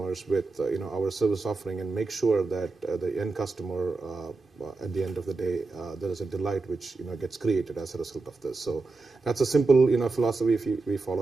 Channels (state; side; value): quieter; left; 3.7 dB